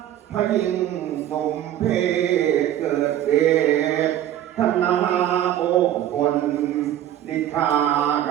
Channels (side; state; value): left; quieter; 11.9 dB